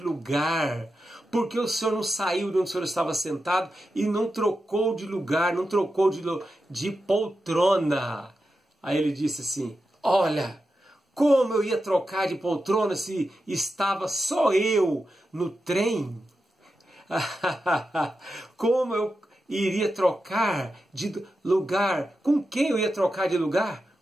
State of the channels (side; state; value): both; normal; correlation 0.90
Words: Por que o senhor não saiu de onde o senhor estava sentado e não trocou de lugar, não trocou de poltrona? Aí ele disse assim: olha, como eu ia trocar de poltrona se estava só eu no trem? Como eu iria trocar de lugar? Com quem eu ia trocar de lugar?